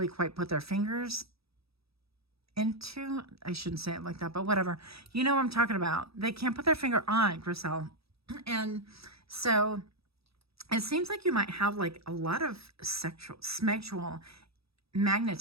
quite put their fingers into. I shouldn't say it like that, but whatever. You know what I'm talking about. They can't put their finger on, Griselle. And so it seems like you might have like a lot of sexual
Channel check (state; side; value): late; left; 0.77 ms